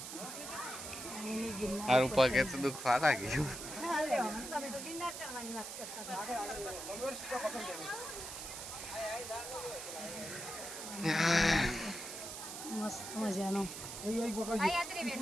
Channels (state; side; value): noise; right; hiss, 8 dB below the sound